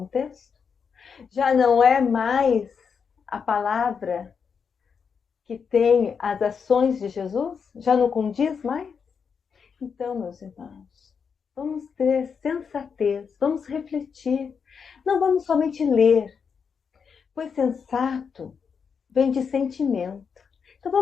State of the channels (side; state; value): right; quieter; 6.2 dB